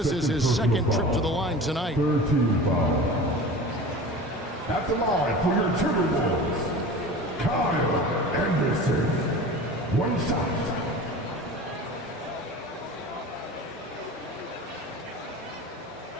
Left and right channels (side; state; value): both; normal; correlation 0.36